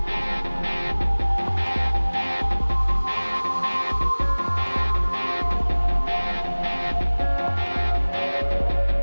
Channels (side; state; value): both; inverted; correlation -1.00